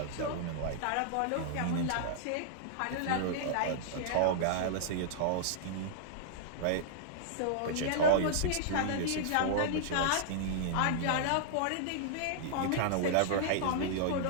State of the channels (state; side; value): different; both; correlation -0.02